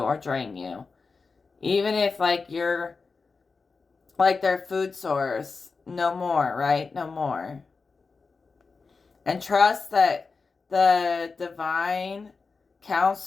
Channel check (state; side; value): quieter; right; 4.5 dB